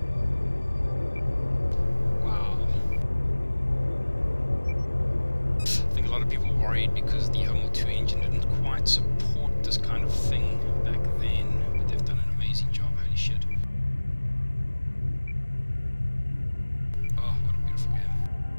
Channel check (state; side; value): inverted; both; correlation -1.00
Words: Wow. I think a lot of people were worried because the Homeworld 2 engine didn't quite support this kind of thing back then. But they've done an amazing job. Holy shit. Oh, what a beautiful game.